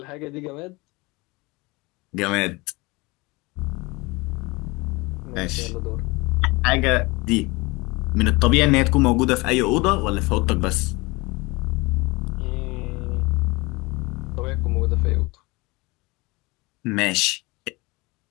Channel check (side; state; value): right; quieter; 24.3 dB